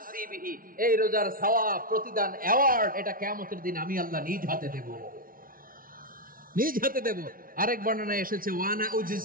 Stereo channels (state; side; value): late; left; 0.41 ms